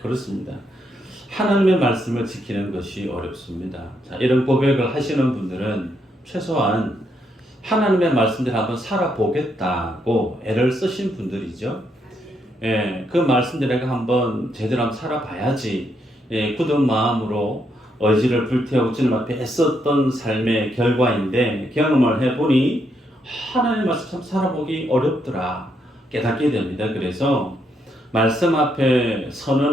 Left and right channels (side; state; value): both; normal; correlation 0.77